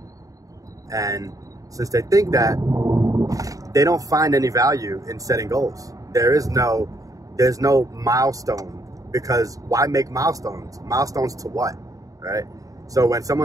And since they think that, they don't find any value in setting goals. There's no milestone, because why make milestones? Milestones to what, right? So when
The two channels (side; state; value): left; late; 0.17 ms